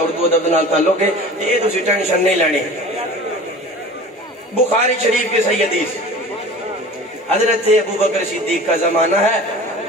اردو ادب دنال تعلق ہے یہ تسی ٹینشن نہیں لینی بخاری شریف کے صحیح حدیث حضرت ابو بکر صدیق کا زمانہ ہے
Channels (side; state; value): both; normal; correlation 0.40